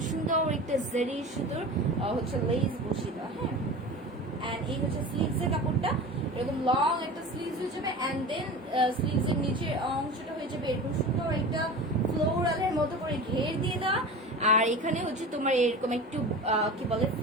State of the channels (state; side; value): normal; both; correlation 0.33